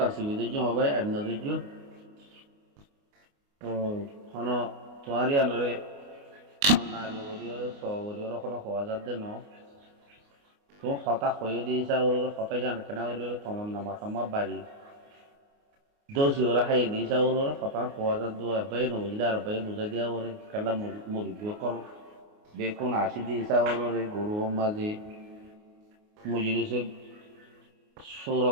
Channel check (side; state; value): left; late; 29 ms